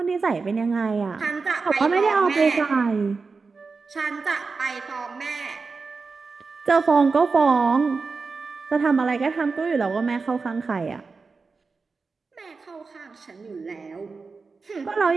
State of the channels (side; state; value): left; quieter; 4.5 dB